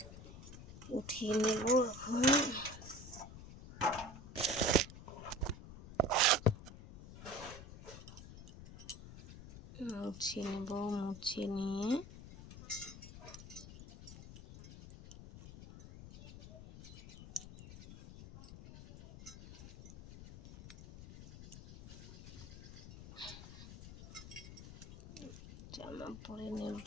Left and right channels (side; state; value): left; noise; rumble, 14 dB below the sound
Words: উঠিয়ে নেব এখন। মুছে নিয়ে জামা পরে